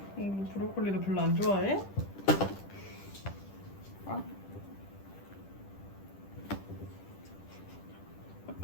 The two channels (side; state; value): right; late; 10 ms